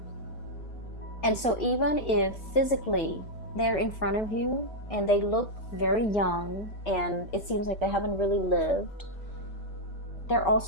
And so even if physically they're in front of you and they look very young and it seems like they haven't really lived, they're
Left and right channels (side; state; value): right; late; 5.1 ms